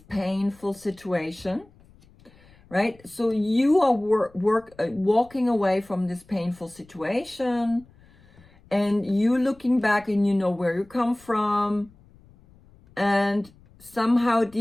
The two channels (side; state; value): left; noise; rumble, 27 dB below the sound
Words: painful situation, right? So you are walking away from this painful situation, and you looking back, and you know where you come from, and somehow